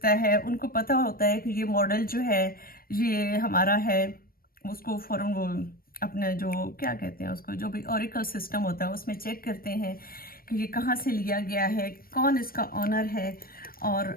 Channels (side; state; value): right; late; 0.43 ms